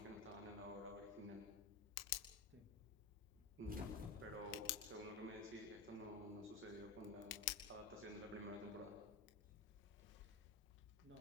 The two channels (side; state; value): right; quieter; 4.7 dB